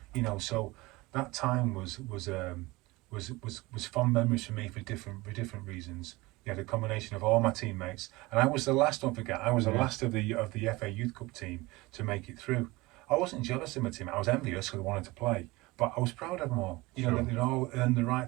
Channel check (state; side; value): quieter; left; 21.8 dB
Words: You know, so that time was fond memories for me for different reasons. You had a combination of all my teammates, and I was the last. Don't forget, I was the last of the FA Youth Cup team to make it through. I wasn't jealous of my team. I was envious because I wanted to play, but I was proud of them all. You know, that they'd all earned the